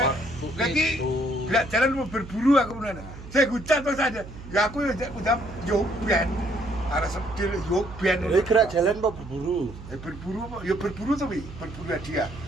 lagi gak jalan mau berburu aku bener. Saya hujan terus aja. Ya aku udah ben. Arek sedil ben. Kowe gerak jalan apa berburu? Berburu apa? Ya berburu to wi, berburu hadiah.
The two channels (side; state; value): right; noise; hum, 14 dB below the sound